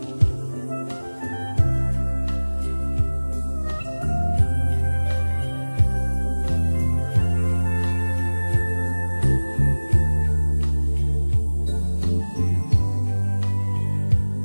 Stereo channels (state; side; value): inverted; both; correlation -1.00